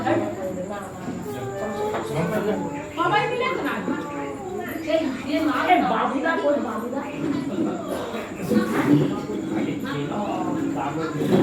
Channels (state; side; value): identical; both; correlation 1.00